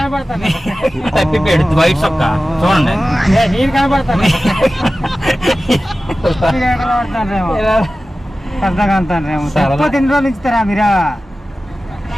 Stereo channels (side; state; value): both; normal; correlation 0.95